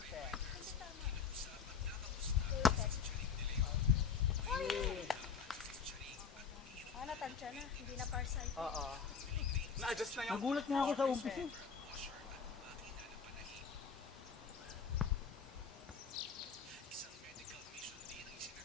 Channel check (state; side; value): quieter; right; 6.2 dB